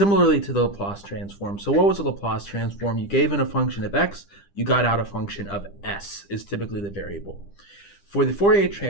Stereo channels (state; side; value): late; right; 10 ms